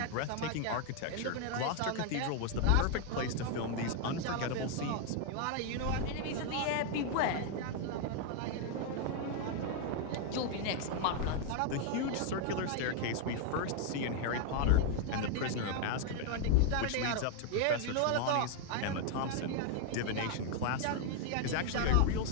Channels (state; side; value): different; both; correlation 0.00